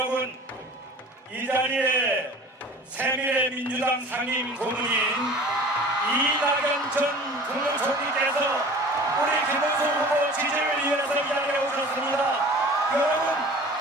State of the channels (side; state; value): both; normal; correlation 0.43